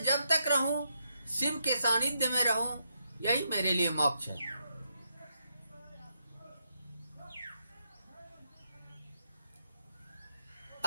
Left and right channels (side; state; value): both; inverted; correlation -0.80